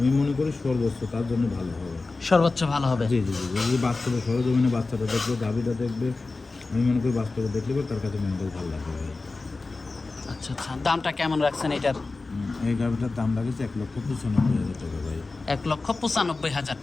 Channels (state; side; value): quieter; right; 3.6 dB